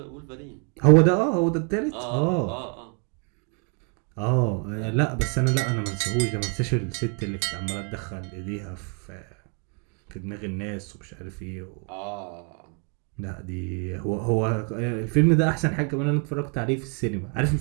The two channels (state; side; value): quieter; left; 37.4 dB